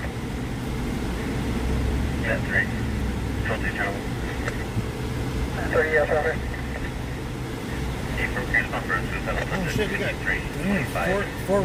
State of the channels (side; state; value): both; identical; correlation 1.00